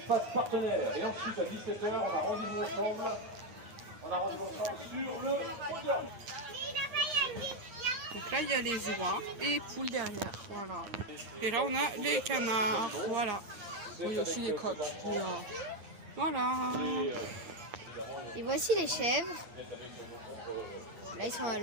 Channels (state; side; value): late; left; 9.6 ms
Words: partenaire. Et ensuite à 17h, on a rendez-vous ensemble. On a rendez-vous ensemble sur le podium. Donc là il y a les oies et les poules derrière. Voilà. Et là on a les canards. Voilà. Bon, il y a aussi les coqs. Mais, voilà. Et voici les chèvres. Là ils sont à